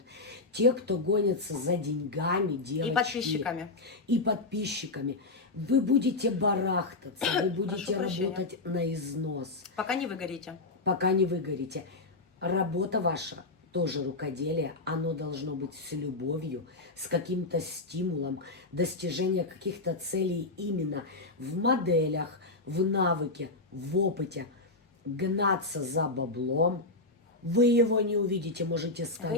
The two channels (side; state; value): right; quieter; 3.2 dB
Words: Те, кто гонится за деньгами, И девочки, подписчиками. и подписчиками, вы будете барахтаться, вы будете Прошу прощения. работать на износ, Пока не выгорите. пока не выгорите. Работа ваша тоже рукоделие, оно должно быть с любовью, с каким-то стимулом, достижения каких-то целей именно в моделях, в навыке, в опыте. Гнаться за баблом, вы его не увидите, можете